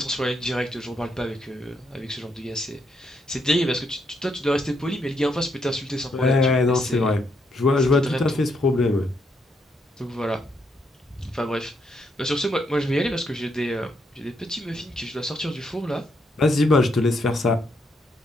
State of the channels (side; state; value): both; normal; correlation 0.76